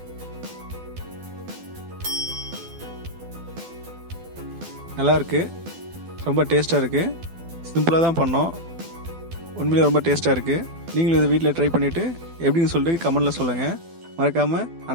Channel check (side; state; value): left; late; 12 ms